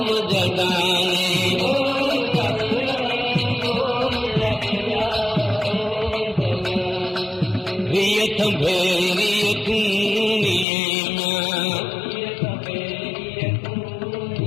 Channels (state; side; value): drops out; right; at 10.7 s